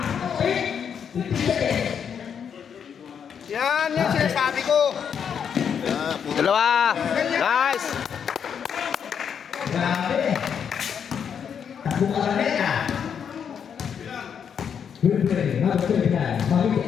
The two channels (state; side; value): quieter; right; 7.6 dB